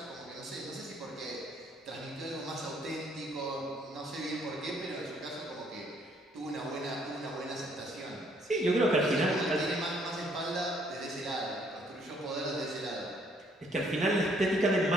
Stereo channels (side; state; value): both; normal; correlation 0.65